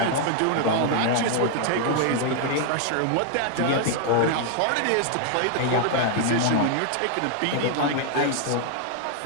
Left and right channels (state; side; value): different; both; correlation 0.00